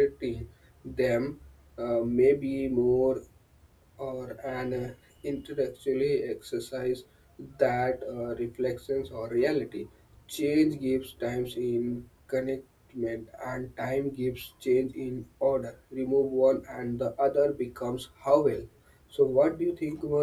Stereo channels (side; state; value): both; identical; correlation 1.00